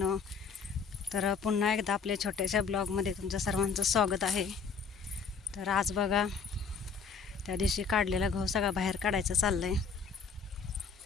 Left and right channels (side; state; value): right; quieter; 5.5 dB